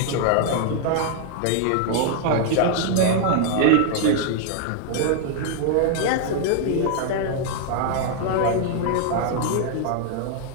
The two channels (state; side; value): different; both; correlation -0.01